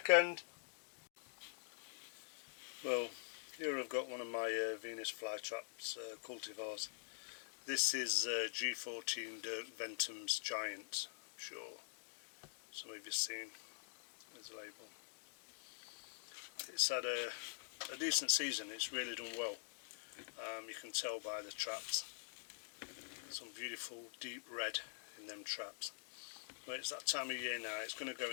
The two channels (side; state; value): right; silent; digital silence